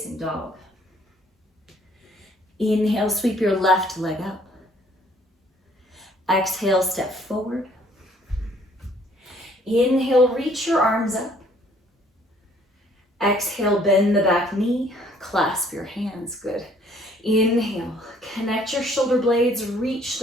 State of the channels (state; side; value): normal; both; correlation 0.61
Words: dog. Inhale, sweep your left leg up. Exhale, step forward. Inhale, reach your arms up. Exhale, bend the back knee, clasp your hands, good. Inhale, connect your shoulder blades, reach